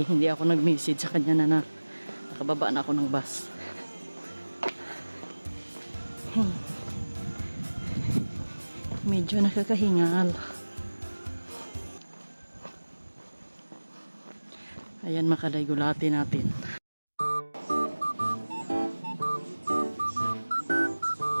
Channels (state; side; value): inverted; both; correlation -1.00